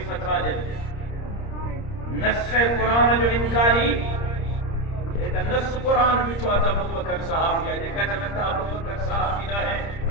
فتوہ دے نص قرآن جو انکاری ایک نص قرآن بھی چھوا تھا ابو بکر صحابی ہے دیکھا جب تھا ابو بکر صحابی نہ ہے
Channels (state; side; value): late; right; 30 ms